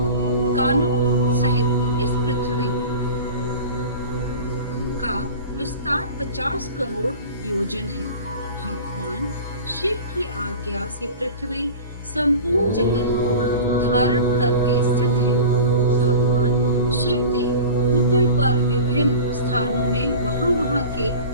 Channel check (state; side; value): inverted; both; correlation -0.36